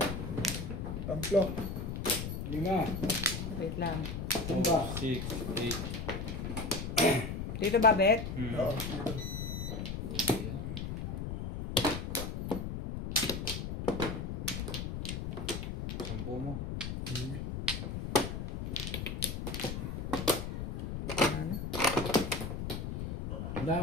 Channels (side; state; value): left; noise; rumble, 4 dB below the sound